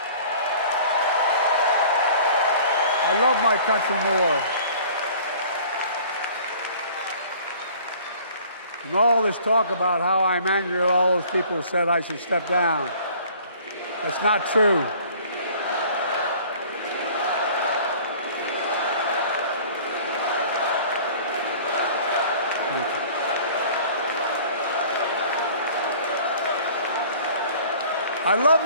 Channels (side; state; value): both; inverted; correlation -0.50